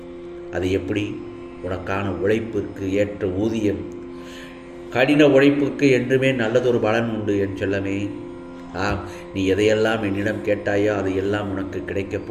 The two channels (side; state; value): both; identical; correlation 1.00